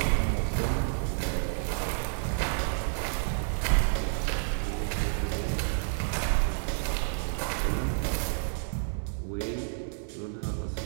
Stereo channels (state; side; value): silent; left; 58 dB below the other